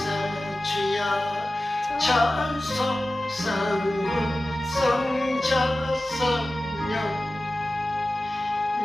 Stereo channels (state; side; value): normal; both; correlation 0.95